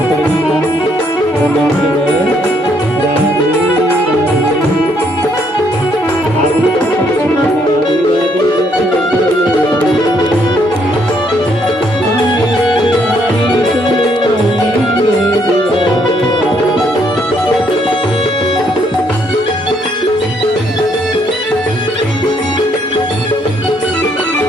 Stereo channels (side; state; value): both; normal; correlation 0.70